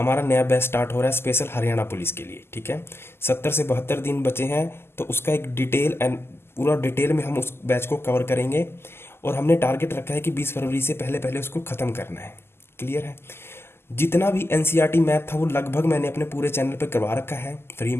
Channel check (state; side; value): late; right; 0.12 ms